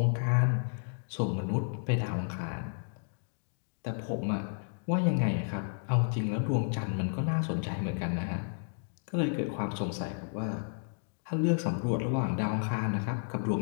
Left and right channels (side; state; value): right; silent; digital silence